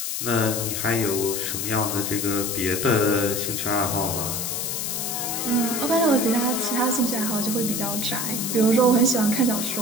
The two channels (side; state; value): left; noise; hiss, 2 dB below the sound